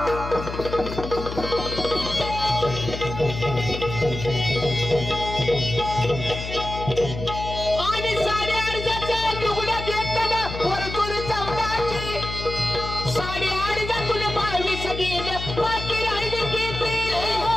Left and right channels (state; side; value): noise; left; hum, 7 dB below the sound